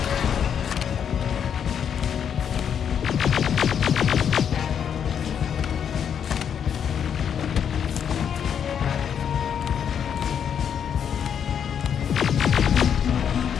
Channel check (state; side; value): quieter; right; 8.1 dB